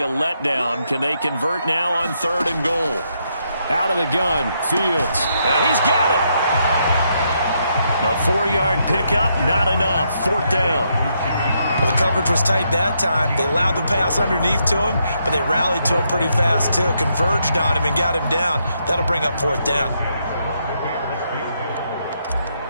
a letdown. Can they convert now on 3rd and goal? Out of the gun, Fields. He's got it. A 4-yard pickup, not enough. 4th down. Well, the coverage was tight that time. They allowed the pass underneath to him, but they rallied to him pretty fast, too. Converged on him and got him down. That'll bring up 4th down.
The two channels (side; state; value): both; inverted; correlation -0.77